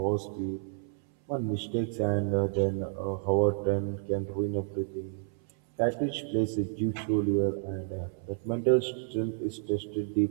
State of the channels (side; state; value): left; silent; 58 dB below the other